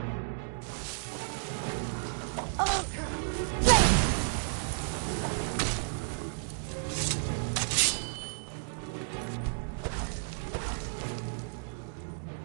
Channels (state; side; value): silent; left; digital silence